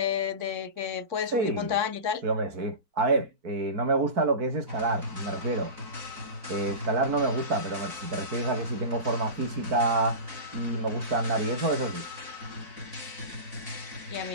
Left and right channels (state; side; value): late; left; 4.0 ms